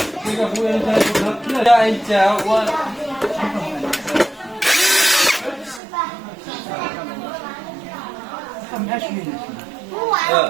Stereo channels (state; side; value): drops out; left; at 5.8 s